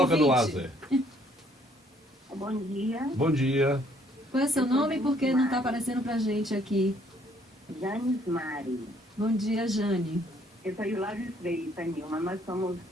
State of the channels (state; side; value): normal; both; correlation 0.64